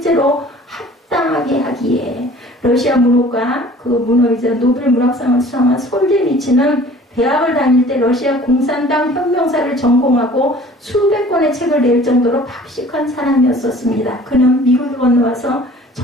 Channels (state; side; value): normal; both; correlation 0.49